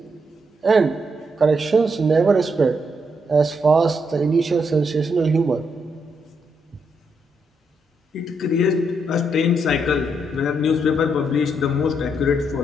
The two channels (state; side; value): normal; both; correlation 0.78